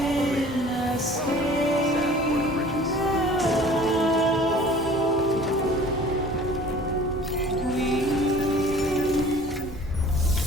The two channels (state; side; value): normal; both; correlation 0.47